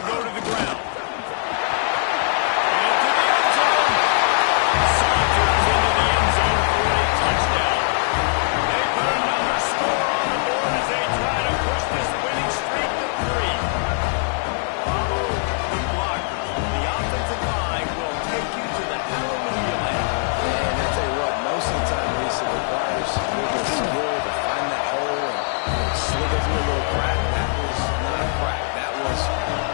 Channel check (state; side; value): silent; right; 60 dB below the other